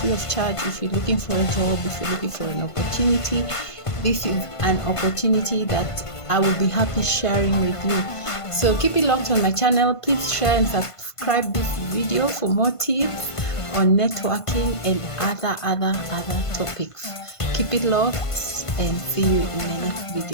free of charge. If you're looking for a job, if you're looking for an opportunity, this is an opportunity that I will be happy sharing with you. So keep it locked on my channel. Please share and subscribe this video for more tips on networking and other topics. Keep it locked and see you in my next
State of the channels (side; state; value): right; late; 1.5 ms